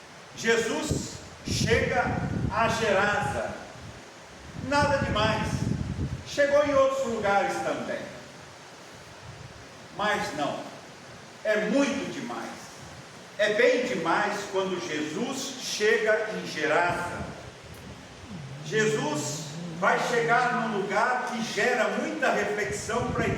Jesus chega a Gerasa, nada demais, chegou em outros lugares também, mas não, é muito demais, é bem demais quando Jesus chega em Gerasa. Jesus vai chegar num lugar que gera muita reflexão para a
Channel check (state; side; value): identical; both; correlation 1.00